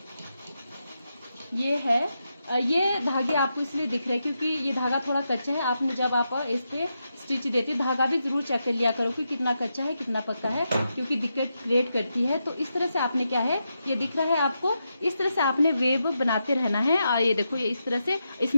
ये है ये धागे आपको इसलिए दिख रहे हैं क्योंकि ये धागा थोड़ा कच्चा है। आपने जब आप इस पे स्टिच देते धागा भी जरूर चेक कर लिया करो कि कितना कच्चा है कितना पक्का है, क्योंकि दिक्कत क्रिएट करती है। तो इस तरह से आपने क्या है, ये दिख रहा है आपको, इस तरह से आपने वेव बनाते रहना है। और ये देखो ये इस तरह से,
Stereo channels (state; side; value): inverted; both; correlation -0.86